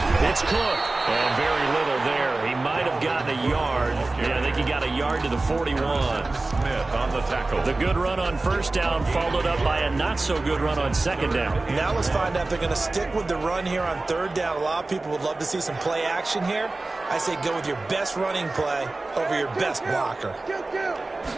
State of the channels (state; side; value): quieter; left; 3.2 dB